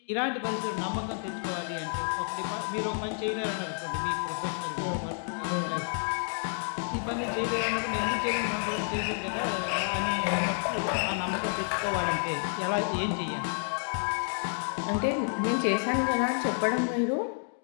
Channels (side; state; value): right; silent; 58 dB below the other